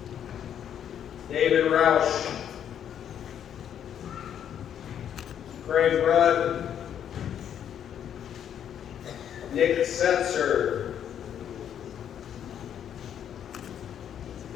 David Roush, Craig Rudd, Nick Setzer,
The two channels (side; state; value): right; quieter; 9.3 dB